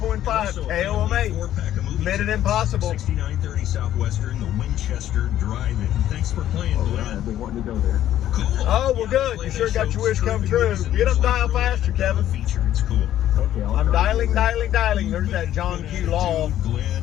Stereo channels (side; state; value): right; quieter; 12.1 dB